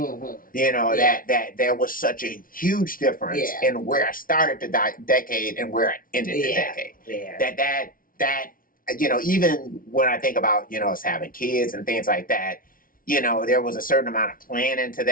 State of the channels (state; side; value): late; right; 0.41 ms